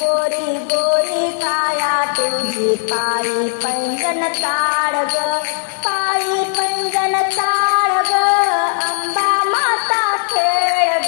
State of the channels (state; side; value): silent; right; digital silence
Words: गोरी गोरी काया तुझी पायी पैंजण ताड ग, पायी पैंजण ताड ग, अंबा माता खेळ